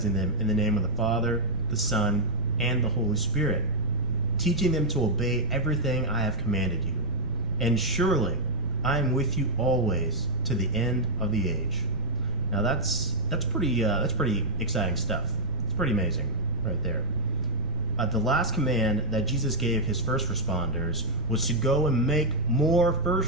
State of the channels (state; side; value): noise; right; rumble, 9 dB below the sound